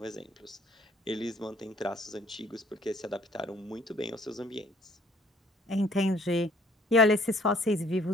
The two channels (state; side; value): normal; both; correlation 0.59